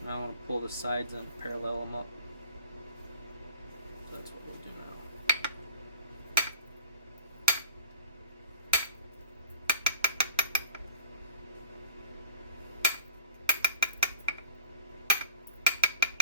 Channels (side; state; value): both; inverted; correlation -0.37